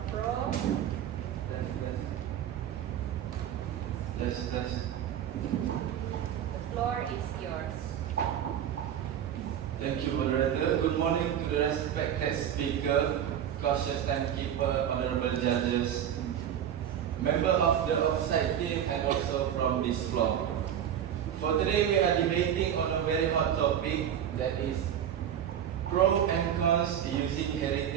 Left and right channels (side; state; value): left; quieter; 9.8 dB